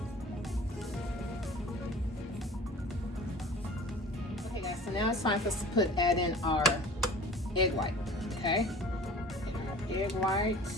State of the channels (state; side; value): normal; both; correlation 0.42